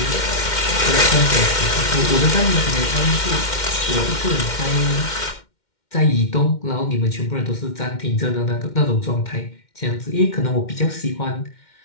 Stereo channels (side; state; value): right; late; 2.1 ms